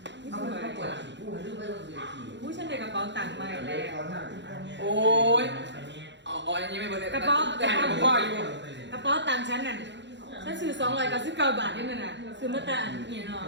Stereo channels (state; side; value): late; left; 0.52 ms